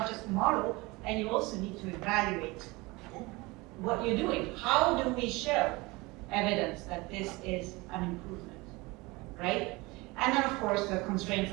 just model, and you also need to evaluate what you're doing. How do we show evidence that this is an improvement, right? And then of course the constraints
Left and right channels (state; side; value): quieter; left; 23.5 dB